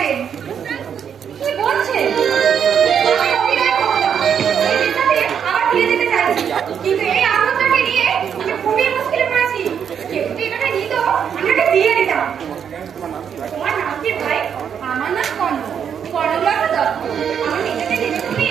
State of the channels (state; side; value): quieter; left; 7.9 dB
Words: কি বলছে? আমি অভিনয় করতাম, এই বিদ্যাতে আবার ফিরে যেতে চাইছি, কিন্তু এই আনন্দটাকে নিয়ে আমি খুবই মুশকিলে পড়েছি। কেউ যদি এটাকে নিত আমি ওকে দিয়ে দিতাম। তোমার নাম কি ভাই? আমার নাম কর্ণ, কর্ণলতা দত্ত। আমার নিজেকে দিতে তুমি?